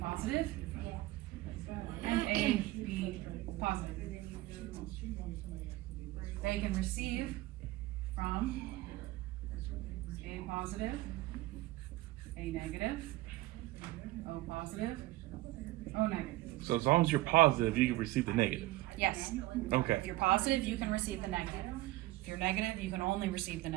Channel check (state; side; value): quieter; left; 18.3 dB